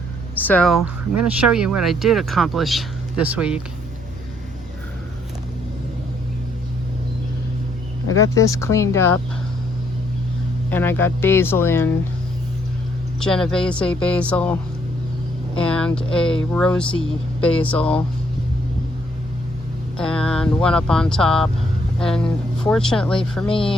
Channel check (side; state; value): both; normal; correlation 0.69